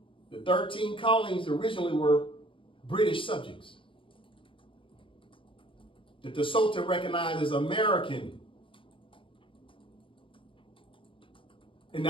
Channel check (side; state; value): right; late; 0.25 ms